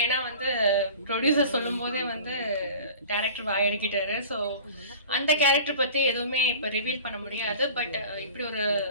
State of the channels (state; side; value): inverted; both; correlation -0.40